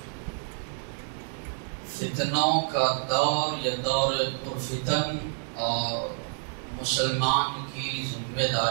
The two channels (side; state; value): left; silent; 58 dB below the other